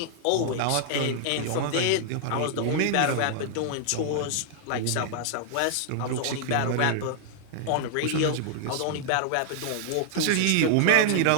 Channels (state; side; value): different; both; correlation -0.01